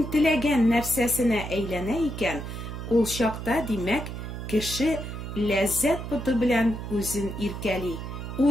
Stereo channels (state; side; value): noise; right; hum, 7 dB below the sound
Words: теләгән нәрсәсенә әйләнә икән, ул чакта, димәк, кеше ләззәт путы белән үзен иркәли,